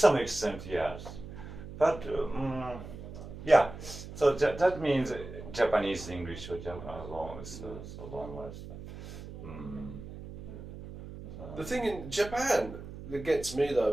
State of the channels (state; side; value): noise; right; hum, 12 dB below the sound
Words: extent, yes. But, yeah, so that means Japanese English or Japanese long words. The thing in Japan that gets me though, I